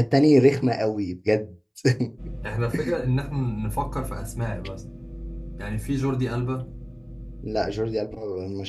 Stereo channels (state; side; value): identical; both; correlation 1.00